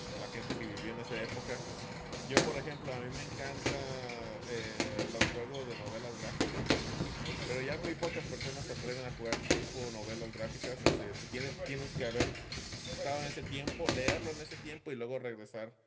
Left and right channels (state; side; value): identical; both; correlation 1.00